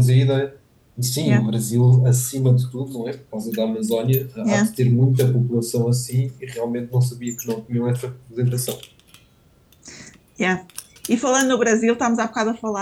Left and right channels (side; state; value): both; identical; correlation 1.00